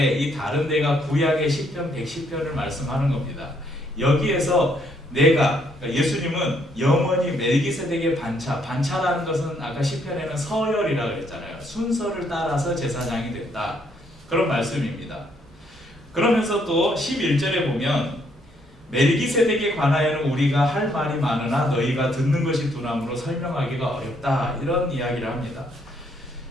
이 다른 데가 구약의 시편 110편을 말씀하는 겁니다. 여기에서 내가, 그러니까 예수님은 영원히 멜기세덱의 반차라는 것은 아까 시편에는 서열이라고 그랬잖아요. 순서를 따라서 제사장이 됐다. 그런 말씀입니다. 그러면서 또 11절에 보면 멜기세덱에 관하여는 우리가 할 말이 많으나 너희가 듣는 것이 둔함으로 설명하기가 어렵다. 이런 이야기를 합니다.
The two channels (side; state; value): both; normal; correlation 0.70